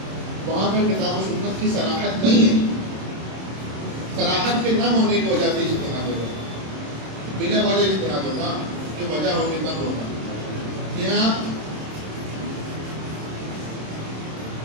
وہاں پر کتاب و سنت کی صراحت نہیں ہے. صراحت کے نہ ہونے کی وجہ سے اجتہاد ہوگا، بنا وجہ اجتہاد ہوگا کہ وجہ ہوگی تب ہوگا. یہاں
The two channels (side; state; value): left; late; 26 ms